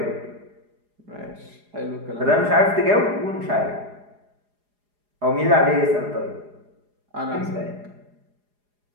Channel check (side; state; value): left; late; 4.8 ms